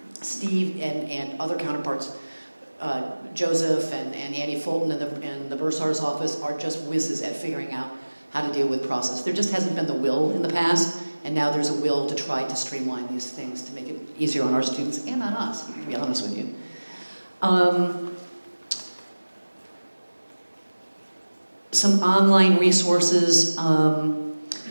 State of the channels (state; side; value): inverted; both; correlation -1.00